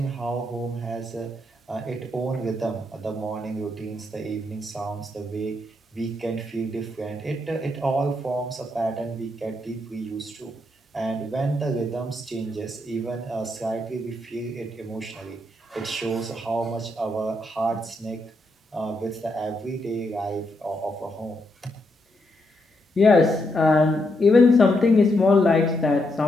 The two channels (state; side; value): normal; both; correlation 0.79